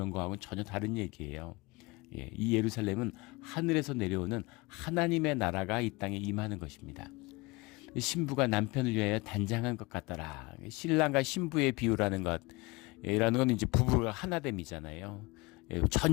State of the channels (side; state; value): right; quieter; 24.4 dB